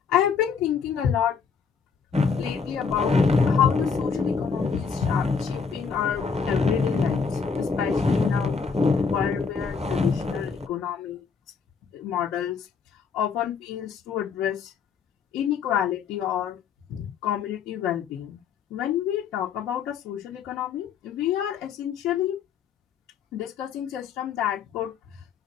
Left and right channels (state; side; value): quieter; right; 5.9 dB